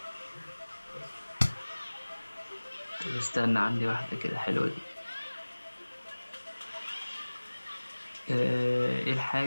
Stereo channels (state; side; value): inverted; both; correlation -1.00